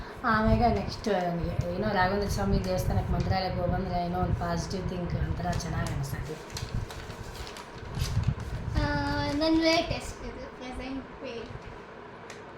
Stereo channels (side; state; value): both; identical; correlation 1.00